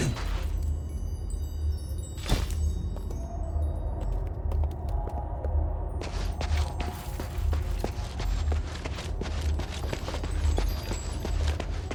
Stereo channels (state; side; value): identical; both; correlation 1.00